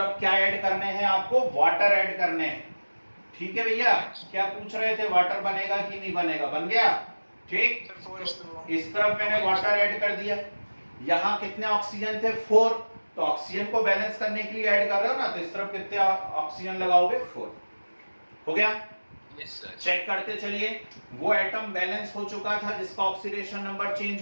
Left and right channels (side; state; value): both; inverted; correlation -1.00